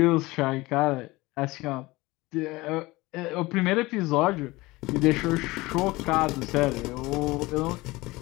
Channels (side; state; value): right; quieter; 21.0 dB